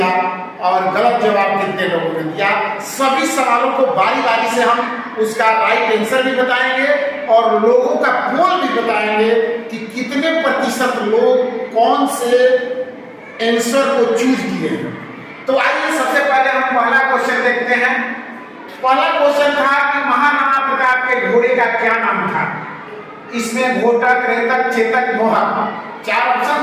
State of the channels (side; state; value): both; identical; correlation 1.00